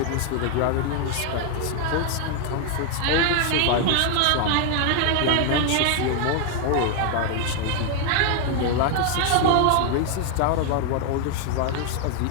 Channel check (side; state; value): both; different; correlation 0.00